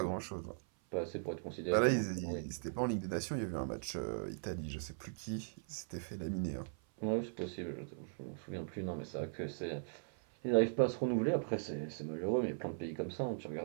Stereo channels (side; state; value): left; silent; 52 dB below the other